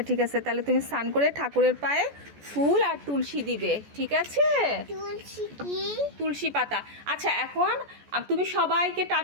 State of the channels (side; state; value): left; late; 14 ms